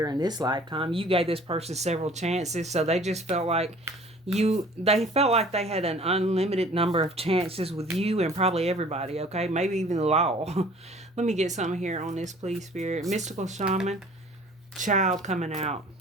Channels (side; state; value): both; normal; correlation 0.50